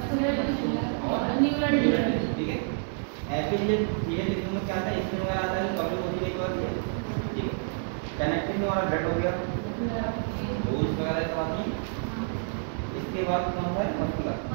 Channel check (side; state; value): left; silent; digital silence